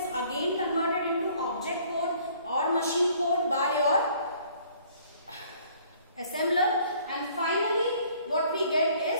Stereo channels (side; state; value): both; inverted; correlation -0.58